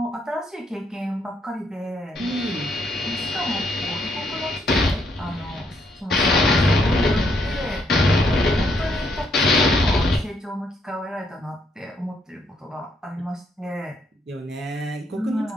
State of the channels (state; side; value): normal; both; correlation 0.73